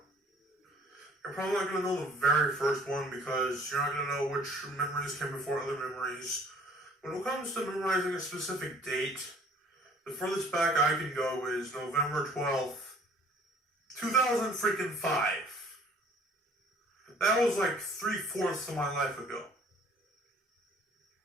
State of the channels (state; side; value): normal; both; correlation 0.54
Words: You're probably not going to know the very first one because you're not going to know which memories came before other memories. When it comes to memorizing a specific date, the furthest back I can go is November 12th, 2005. That was like 3/4 of my life ago.